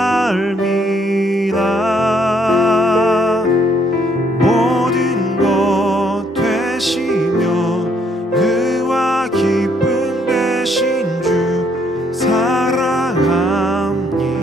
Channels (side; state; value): both; normal; correlation 0.69